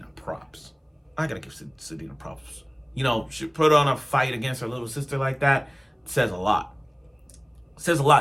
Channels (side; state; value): both; identical; correlation 1.00